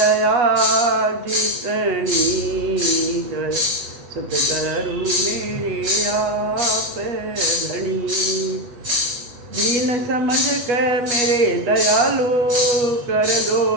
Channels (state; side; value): late; left; 8.3 ms